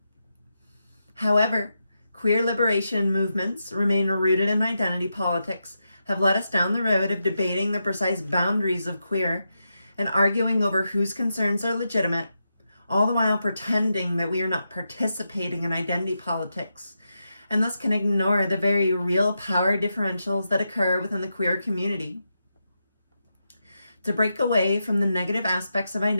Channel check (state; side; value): inverted; both; correlation -0.87